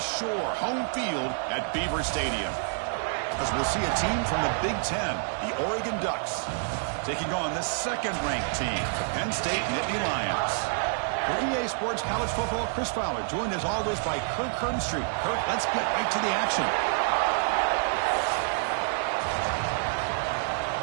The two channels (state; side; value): silent; left; 59 dB below the other